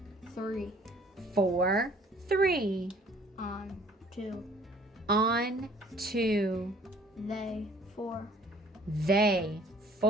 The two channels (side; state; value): both; normal; correlation 0.56